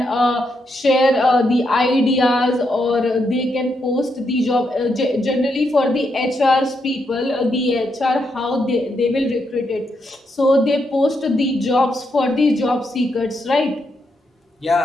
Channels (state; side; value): normal; both; correlation 0.80